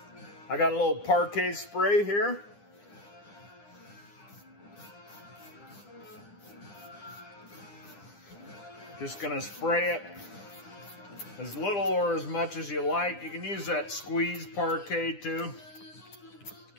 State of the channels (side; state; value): right; late; 9.9 ms